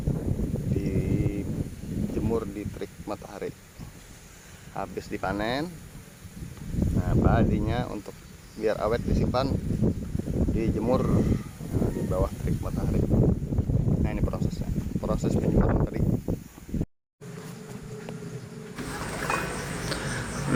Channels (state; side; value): identical; both; correlation 1.00